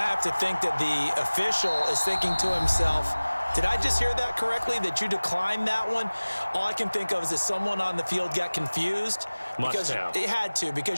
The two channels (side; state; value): both; inverted; correlation -1.00